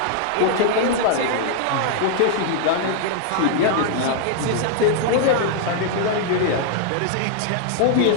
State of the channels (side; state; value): both; different; correlation -0.01